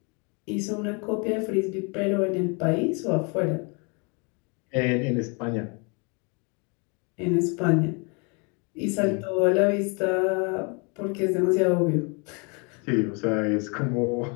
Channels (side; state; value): right; quieter; 33.0 dB